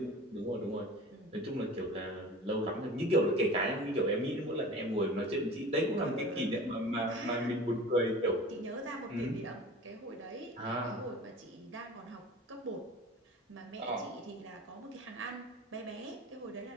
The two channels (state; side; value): normal; both; correlation 0.39